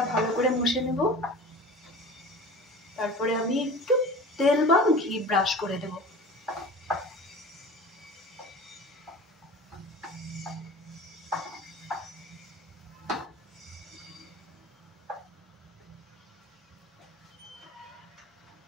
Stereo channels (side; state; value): both; normal; correlation 0.38